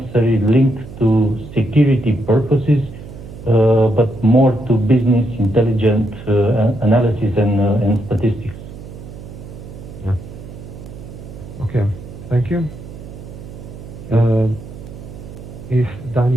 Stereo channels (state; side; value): noise; right; hum, 14 dB below the sound